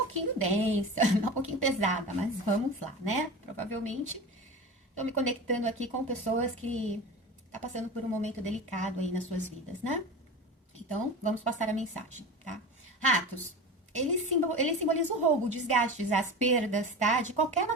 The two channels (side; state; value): both; normal; correlation 0.30